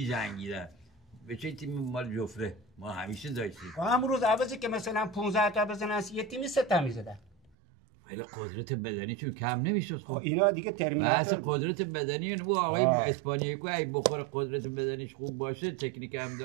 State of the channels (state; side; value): drops out; left; at 7.5 s